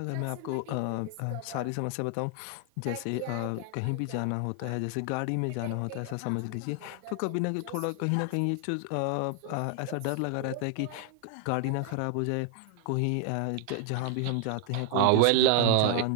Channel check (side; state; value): both; different; correlation 0.00